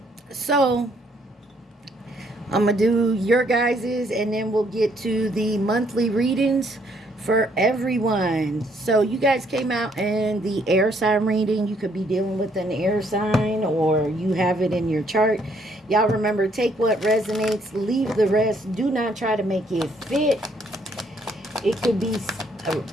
so I'm gonna do your guys's and then we'll get to the monthly readings for everyone. So you guys came out in the air sign reading. You could be dealing with an air sign or you have it in your chart. Y'all remember, take what resonates, leave the rest. Do not try to make it fit. It could be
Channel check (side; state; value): both; normal; correlation 0.68